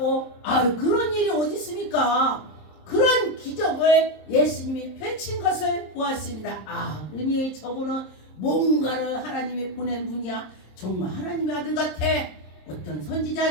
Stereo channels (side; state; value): right; late; 26 ms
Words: 그런 일이 어디 있습니까? 그런 기적을 예수님이 펼친 것을 보았습니다. 그러니 저분은 뭔가를 하나님이 보낸 분이야. 정말 하나님의 아들 같아. 어떤